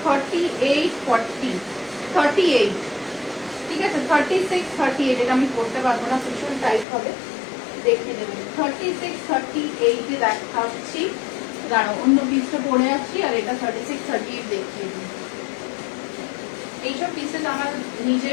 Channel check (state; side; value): drops out; right; at 6.9 s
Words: 38 40, 38, ঠিক আছে। 36 38 এটা আমি করতে পারবো না, ভীষণ টাইট হবে, দেখে নেবেন। 36 38 এ দেখাচ্ছি, দাঁড়াও অন্য পিসটা পরে আছি, আর এটা 36 38 দেখিয়ে দিই। এইসব পিসেস আমার